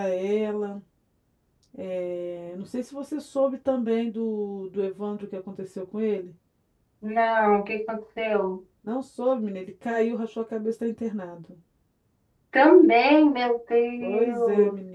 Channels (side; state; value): both; identical; correlation 1.00